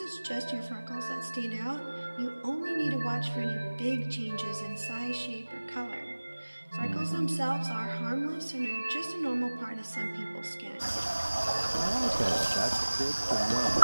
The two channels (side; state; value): both; inverted; correlation -1.00